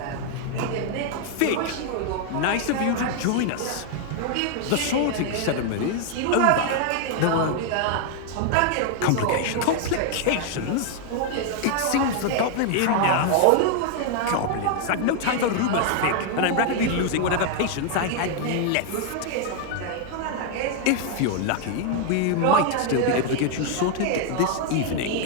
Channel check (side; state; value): both; different; correlation 0.00